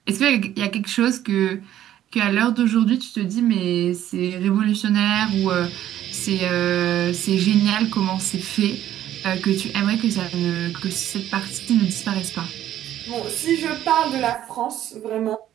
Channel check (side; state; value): left; quieter; 12.1 dB